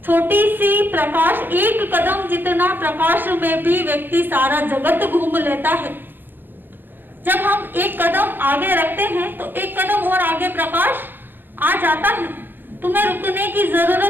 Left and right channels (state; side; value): late; left; 0.095 ms